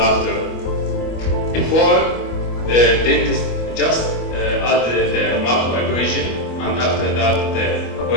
after. Before, the dentist just added the macro abrasion, and after that the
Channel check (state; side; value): late; right; 25 ms